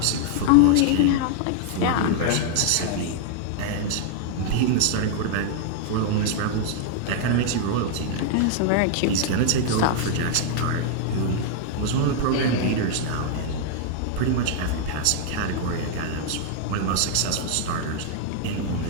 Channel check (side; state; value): both; different; correlation 0.00